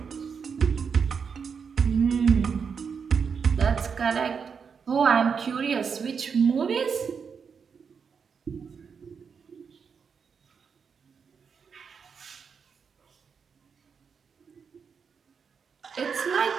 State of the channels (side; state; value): left; quieter; 6.2 dB